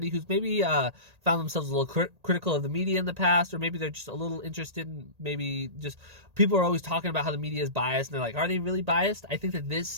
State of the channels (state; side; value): late; left; 1.8 ms